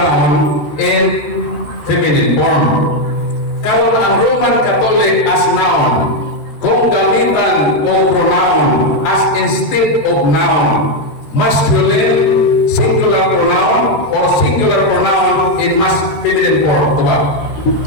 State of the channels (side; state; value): right; late; 13 ms